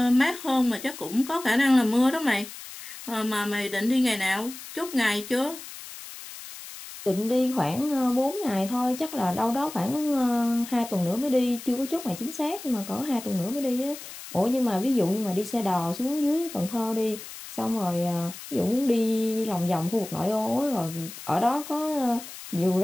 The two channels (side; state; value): left; noise; hiss, 13 dB below the sound